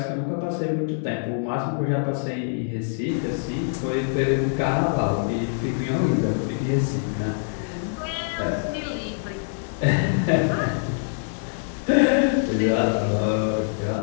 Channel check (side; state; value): right; silent; digital silence